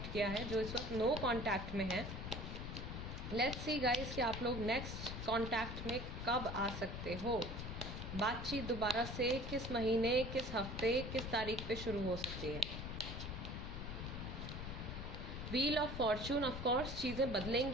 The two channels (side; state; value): left; noise; rumble, 6 dB below the sound